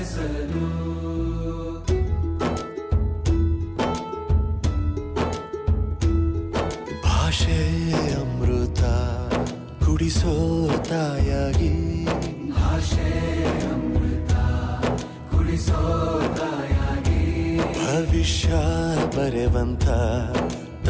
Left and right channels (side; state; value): both; identical; correlation 1.00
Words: ಭಾಷೆ ಅಮೃತ ಕುಡಿಸೋ ತಾಯಾಗಿ ಭಾಷೆ ಅಮೃತ ಕುಡಿಸೋ ತಾಯಾಗಿ ಭವಿಷ್ಯ ಬರೆವಂತ